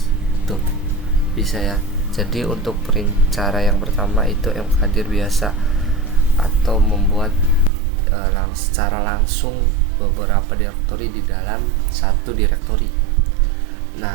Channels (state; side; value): drops out; left; at 7.7 s